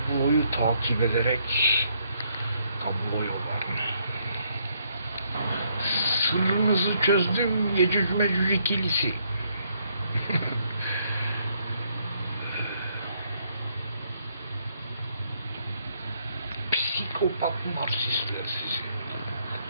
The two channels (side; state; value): both; inverted; correlation -0.72